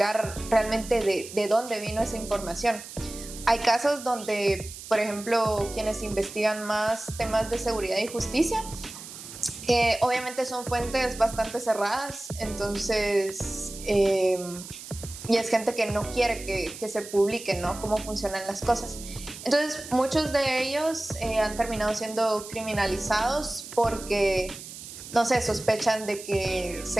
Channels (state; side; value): noise; right; hiss, 13 dB below the sound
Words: realmente de dónde vino esa información. Hay casos donde, por ejemplo, quienes investigan más temas de seguridad y justicia, obviamente son fuentes bastante cerradas, entonces, y es gente que no quiere que se publique, ¿no? Cómo funcionan las cosas. Entonces, muchos de ellos han terminado siendo criminalizados porque, no sé, sospechan de que